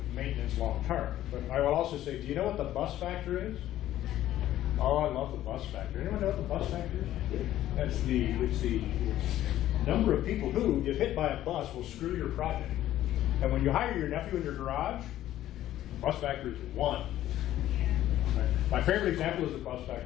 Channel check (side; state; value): right; quieter; 13.2 dB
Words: maintenance long term. But I will also say, do you know what the bus factor is? Oh, I love the bus factor. Anyone know what the bus factor is? It's the number of people who, if hit by a bus, will screw your project. And when you hire your nephew in your garage, the bus factor is 1. Right? My favorite example is the bus